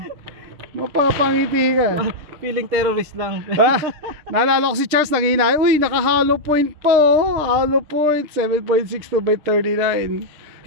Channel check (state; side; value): late; left; 7.0 ms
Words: Mapapangiti ka. Feeling terrorist lang. Naalala ko si Charles nanginay. Uy, naka hollow point po. Hollow point. 7.62 by 39.